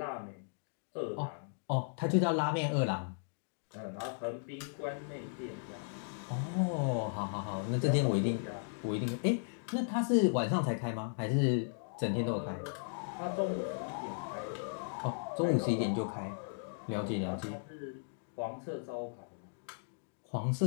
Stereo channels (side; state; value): right; silent; digital silence